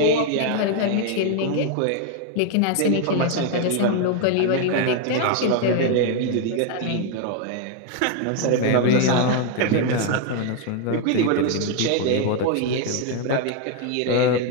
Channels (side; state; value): both; different; correlation 0.01